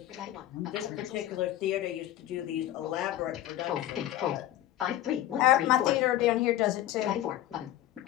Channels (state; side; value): quieter; right; 13.6 dB